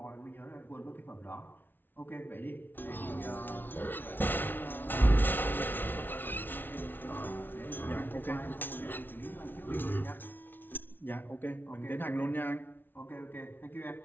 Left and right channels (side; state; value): right; late; 0.095 ms